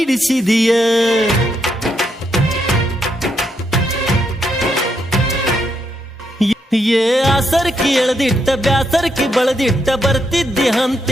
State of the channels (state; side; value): normal; both; correlation 0.79